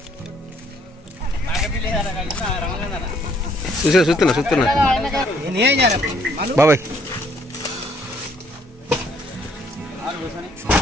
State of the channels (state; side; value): normal; both; correlation 0.65